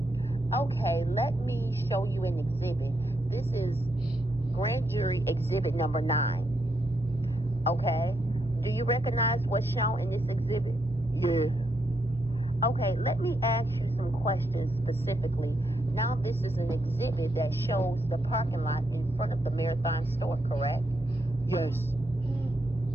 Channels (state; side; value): normal; both; correlation 0.79